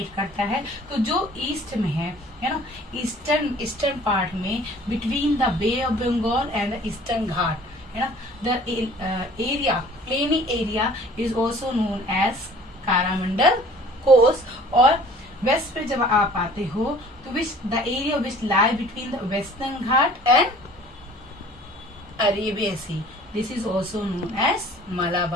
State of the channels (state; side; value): normal; both; correlation 0.50